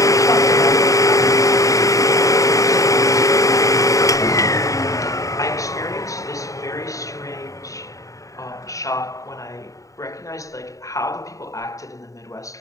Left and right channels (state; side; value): late; right; 0.16 ms